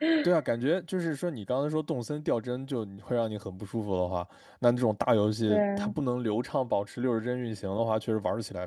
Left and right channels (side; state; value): both; identical; correlation 1.00